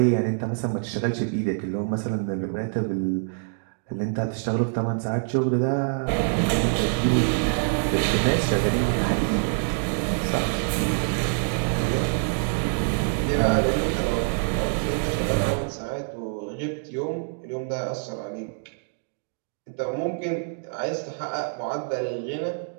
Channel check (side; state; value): left; silent; digital silence